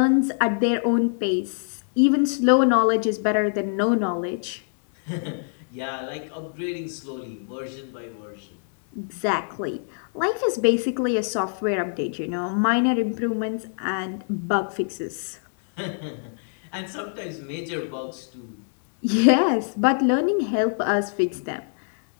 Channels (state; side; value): silent; right; digital silence